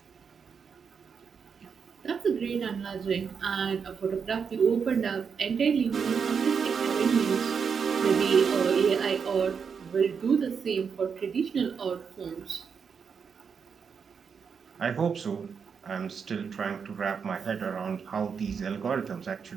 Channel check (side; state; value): left; quieter; 6.3 dB